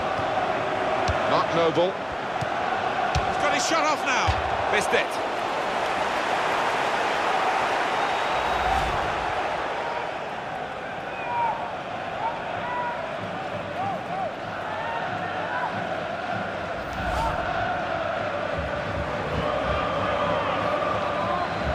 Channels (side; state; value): both; identical; correlation 1.00